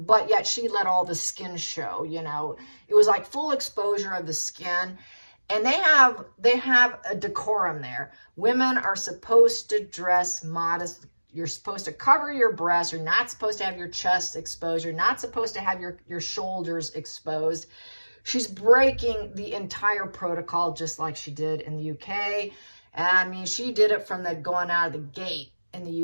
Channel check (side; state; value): both; inverted; correlation -1.00